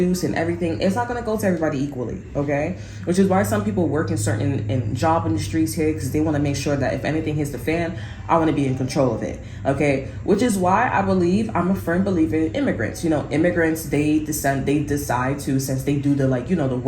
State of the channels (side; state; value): both; identical; correlation 1.00